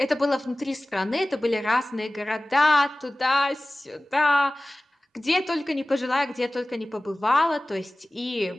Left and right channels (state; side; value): normal; both; correlation 0.98